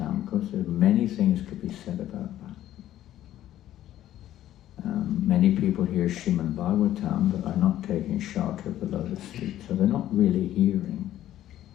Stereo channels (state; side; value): quieter; right; 12.8 dB